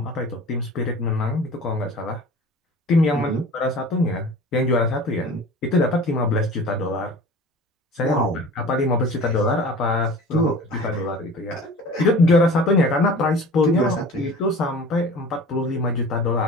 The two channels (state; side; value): normal; both; correlation 0.41